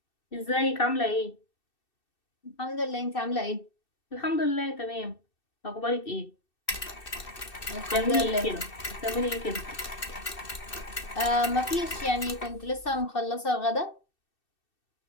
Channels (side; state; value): right; late; 2.6 ms